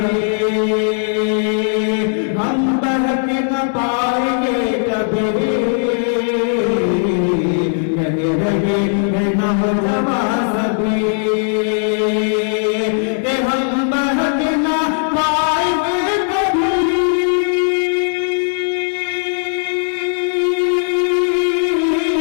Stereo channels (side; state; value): right; silent; digital silence